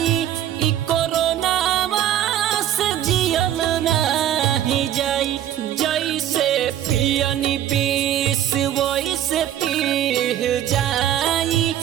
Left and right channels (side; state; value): left; quieter; 11.3 dB